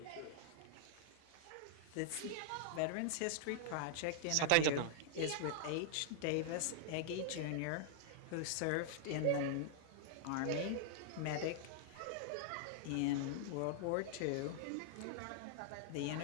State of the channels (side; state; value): both; different; correlation -0.01